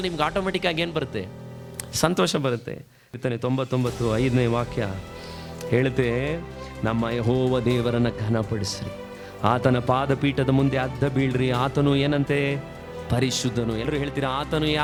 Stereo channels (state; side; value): identical; both; correlation 1.00